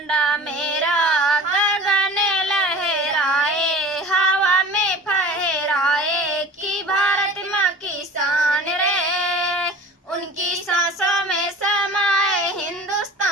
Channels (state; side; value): normal; both; correlation 0.40